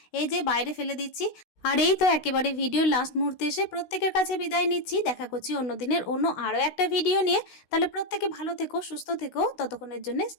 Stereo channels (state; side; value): late; right; 16 ms